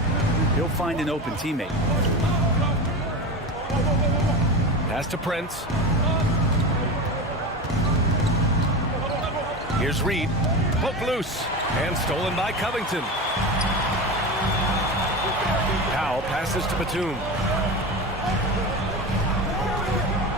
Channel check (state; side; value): normal; both; correlation 0.25